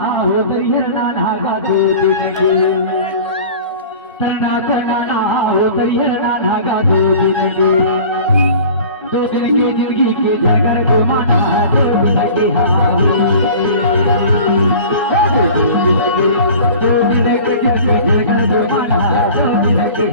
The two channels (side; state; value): both; inverted; correlation -0.42